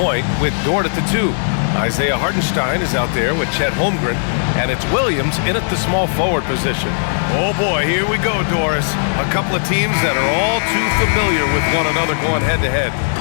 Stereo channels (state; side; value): silent; right; digital silence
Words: with Dort at the 2. Isaiah Hartenstein is out there with Chet Holmgren, and it's Williams in at the small forward position. Oh boy, here we go, Doris. A couple of teams that are all too familiar with one another going head-to-head.